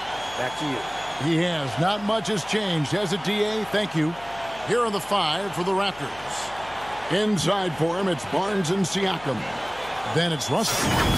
Back to you. He has. Not much has changed, has it, DA? Thank you. Here are the five for the Raptors. Inside for him, it's Barnes and Siakam. Then it's Russell,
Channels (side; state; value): left; noise; hum, 21 dB below the sound